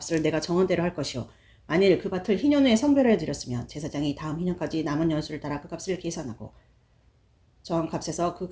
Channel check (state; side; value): identical; both; correlation 1.00